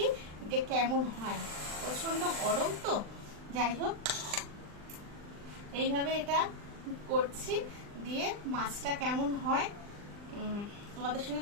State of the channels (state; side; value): late; left; 39 ms